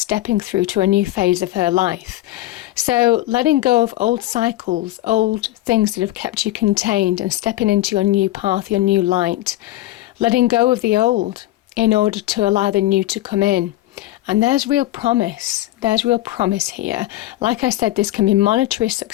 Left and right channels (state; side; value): quieter; right; 15.7 dB